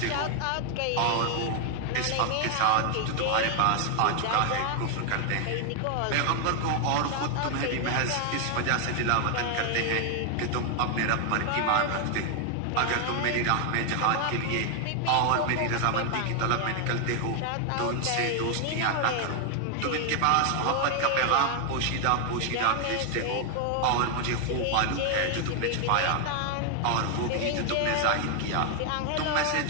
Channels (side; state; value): both; different; correlation 0.00